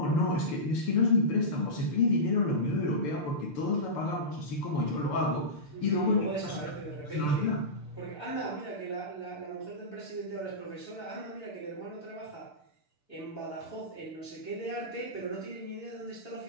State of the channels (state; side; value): late; right; 6.8 ms